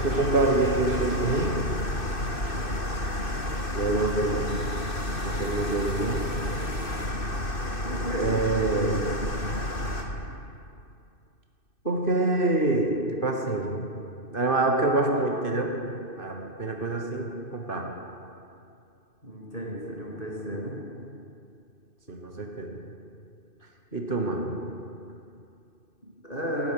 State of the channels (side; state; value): right; late; 2.6 ms